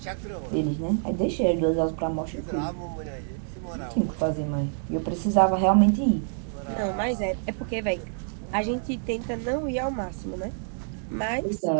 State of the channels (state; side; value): silent; left; digital silence